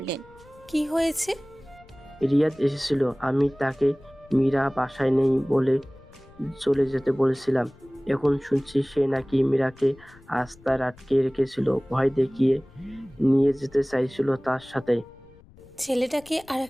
কি হয়েছে? রিয়াদ এসেছিল, আমি তাকে মীরা বাসায় নেই বলে চলে যেতে বলেছিলাম। এখন শুনছি সে নাকি মীরাকে আস্তায় আটকে রেখেছিল, ভয় দেখিয়ে নিয়ে যেতে চাইছিল তার সাথে। ছেলেটাকে আর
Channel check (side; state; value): left; noise; rumble, 25 dB below the sound